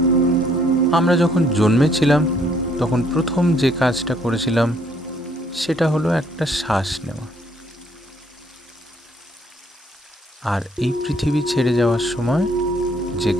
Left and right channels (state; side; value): normal; both; correlation 0.66